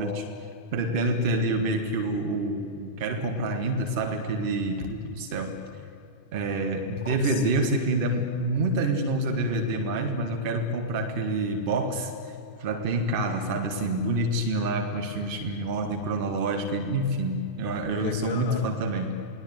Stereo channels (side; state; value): left; late; 2.6 ms